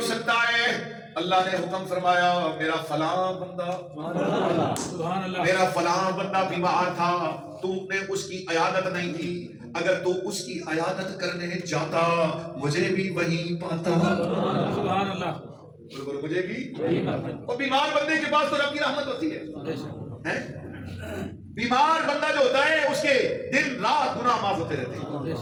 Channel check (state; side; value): identical; both; correlation 1.00